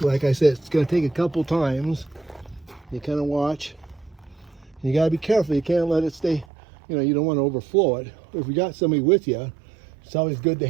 I said, it's going to take a couple times. You kind of watch. You got to be careful. You can't let it stay, you know, you don't want to overflow it. If you got somebody with you, it's always good to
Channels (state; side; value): drops out; left; at 6.5 s